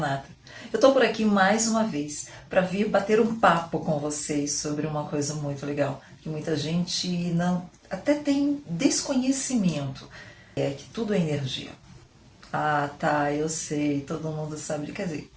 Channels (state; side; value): identical; both; correlation 1.00